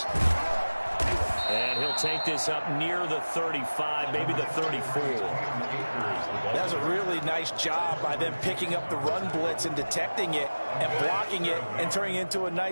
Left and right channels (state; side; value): inverted; both; correlation -1.00